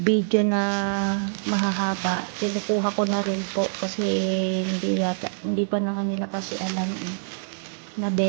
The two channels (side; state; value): left; silent; digital silence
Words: na mahahaba. Kinukuha ko na rin po kasi hindi pa na kanila kasi alam na